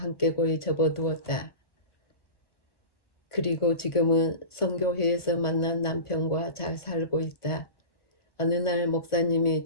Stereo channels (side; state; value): right; late; 1.4 ms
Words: 고이 접어두었다. 그리고 지금은 선교회에서 만난 남편과 잘 살고 있다. 어느 날 목사님이